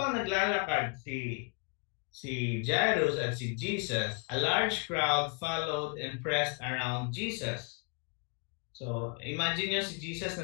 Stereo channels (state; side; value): quieter; right; 35.7 dB